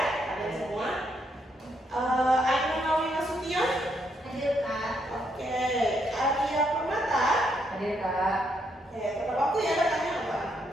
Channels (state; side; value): normal; both; correlation 0.76